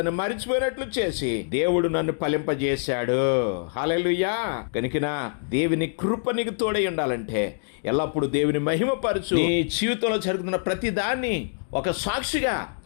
మరిచిపోయినట్లు చేసి దేవుడు నన్ను ఫలింపజేశాడు. హల్లెలూయా. కనుక దేవుని కృప నీకు తోడై ఉండాలంటే ఎల్లప్పుడూ దేవుని మహిమపరచు. నీ జీవితంలో జరుగుతున్న ప్రతి దాన్ని ఒక సాక్షిగా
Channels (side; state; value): right; silent; digital silence